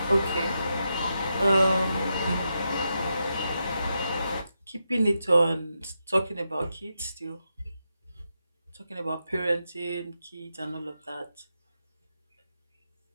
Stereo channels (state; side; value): inverted; both; correlation -0.86